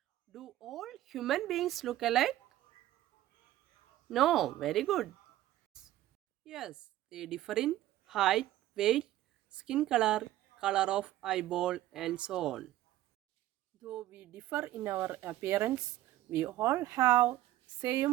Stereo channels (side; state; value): left; quieter; 14.6 dB